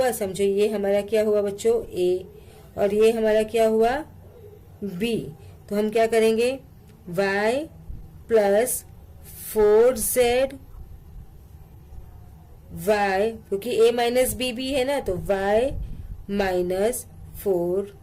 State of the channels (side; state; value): both; identical; correlation 1.00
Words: समझो ये हमारा क्या हुआ बच्चों a, और ये हमारा क्या हुआ b। तो हम क्या करेंगे y प्लस 4z y, क्योंकि a माइनस बी भी है ना, तो y माइनस